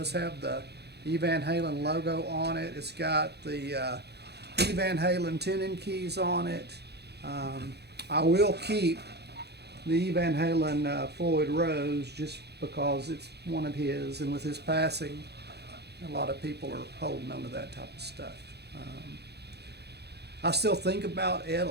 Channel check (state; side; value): late; left; 0.48 ms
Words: have the E Van Halen logo on it. It's got the E Van Halen tuning keys on it. I will keep the E Van Halen Floyd Rose just because it's one of his, and with his passing, a lot of people are holding on to that type of stuff. I still think about Ed